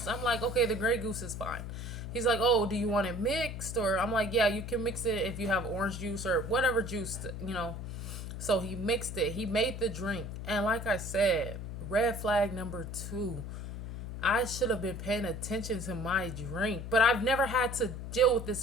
I'm like, okay, the Grey Goose is fine. He's like, oh, do you want it mixed? Or I'm like, yeah, you can mix it if you have orange juice or whatever juice. So he mixed it. He made the drink. And like I said, red flag number 2. I should have been paying attention to my drink. But I've never had to deal with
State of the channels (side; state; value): left; noise; hum, 7 dB below the sound